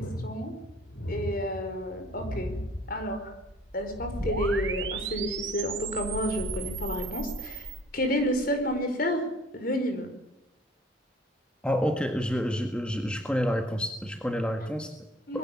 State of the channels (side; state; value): both; normal; correlation 0.52